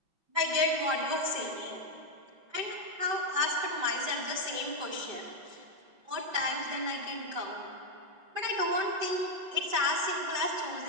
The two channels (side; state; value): left; late; 5.2 ms